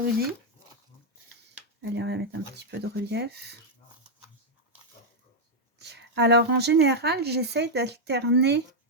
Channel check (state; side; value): normal; both; correlation -0.02